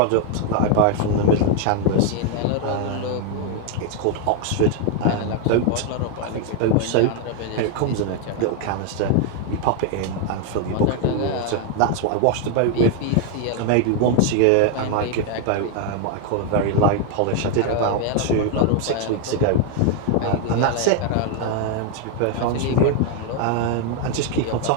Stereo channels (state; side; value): different; both; correlation 0.00